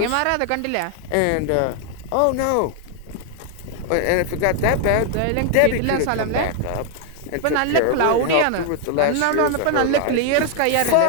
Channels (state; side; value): different; both; correlation 0.00